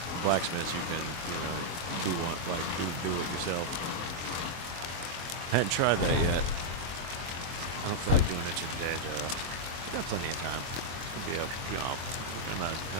blacksmiths you can, you know, do it yourself. I hadn't tried that yet. I don't feel like doing it today, though. I've got plenty of time. Be a, you know, not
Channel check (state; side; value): late; left; 23 ms